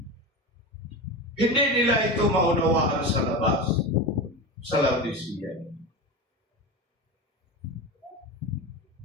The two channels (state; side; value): normal; both; correlation 0.24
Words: Hindi nila ito maunawaan sa labas, sa Laodicea.